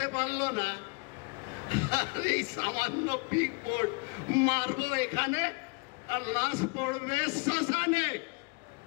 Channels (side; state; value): right; quieter; 30.5 dB